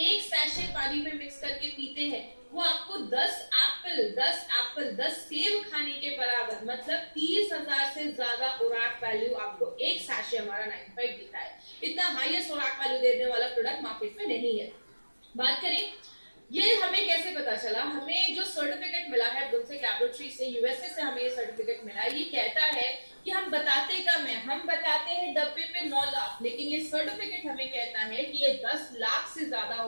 सैशे पानी में मिक्स करके पीते हैं, वो आपको 10 सेब खाने के बराबर, मतलब 30,000 से ज्यादा ओराक वैल्यू आपको एक सैशे हमारा 95 देता है। इतना हाईएस्ट ओराक वैल्यू देने वाला प्रोडक्ट मार्केट में नहीं है। बात करें ये हमें कैसे पता चला, हमें जो सर्टिफिकेट मिला है ब्रुंसविक लैबोरेटरी से, यूएसए से हमें ये सर्टिफिकेट मिला है। ये कहता है कि हम बताते कम है, हम बताते हैं डब्बे पे 9 लाख, लेकिन ये सर्टिफिकेट हमें कहता है कि ये 10 लाख से ज्यादा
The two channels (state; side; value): inverted; both; correlation -1.00